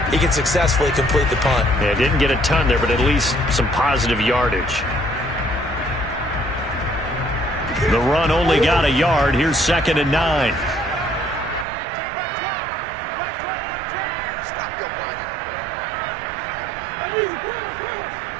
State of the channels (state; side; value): drops out; left; at 11.7 s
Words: he can successfully complete the punt. Yeah, didn't get a ton there, but at least some positive yardage. The run only got a yard. Here's 2nd and 9.